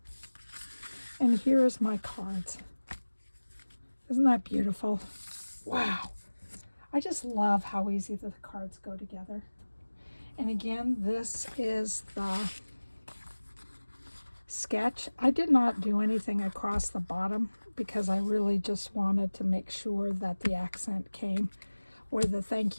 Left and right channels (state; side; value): inverted; both; correlation -1.00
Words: And here's my cards. Isn't that beautiful? Wow. I just love how easy the cards go together. And again, this is the sketch. I did not do anything across the bottom because I really just wanted to make sure that the accent came where the thank